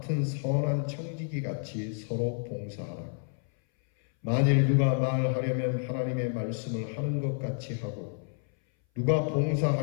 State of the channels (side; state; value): right; silent; 58 dB below the other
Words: 선한 청지기 같이 서로 봉사하라. 만일 누가 말하려면 하나님의 말씀을 하는 것 같이 하고 누가